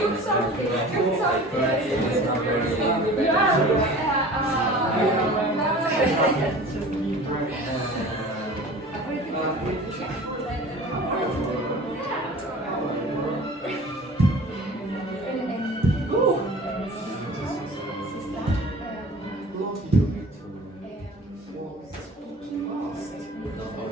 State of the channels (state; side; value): normal; both; correlation 0.42